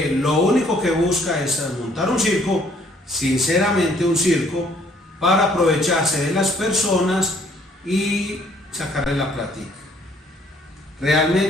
lo único que busca es montar un circo, sinceramente un circo, para aprovecharse de las personas y sacarle la plática.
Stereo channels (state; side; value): normal; both; correlation 0.62